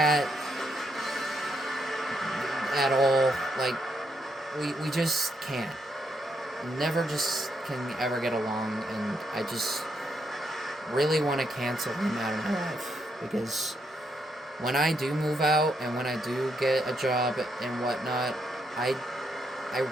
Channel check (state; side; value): normal; both; correlation 0.77